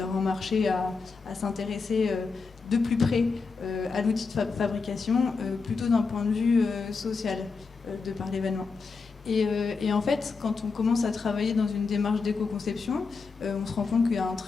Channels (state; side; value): quieter; right; 4.7 dB